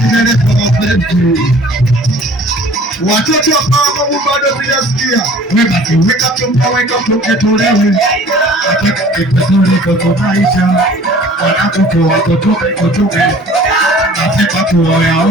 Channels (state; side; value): normal; both; correlation 0.50